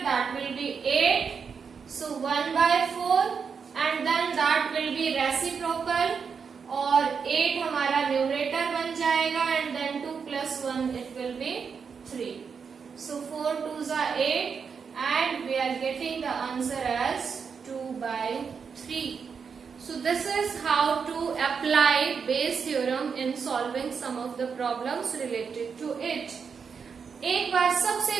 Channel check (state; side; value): quieter; left; 6.1 dB